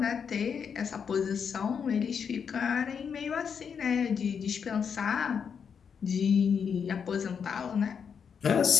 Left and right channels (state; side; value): quieter; right; 6.8 dB